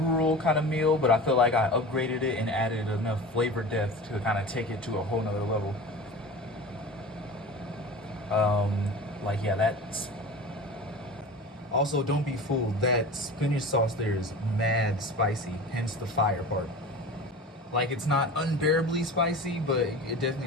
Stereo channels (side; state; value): both; normal; correlation 0.34